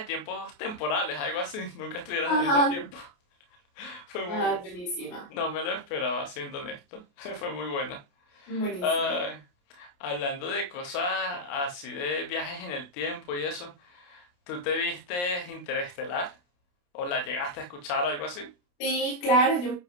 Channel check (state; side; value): late; right; 28 ms